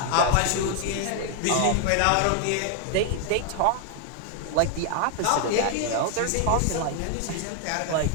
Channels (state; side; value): different; both; correlation 0.00